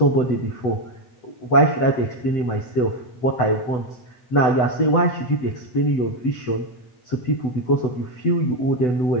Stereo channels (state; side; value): late; right; 8.0 ms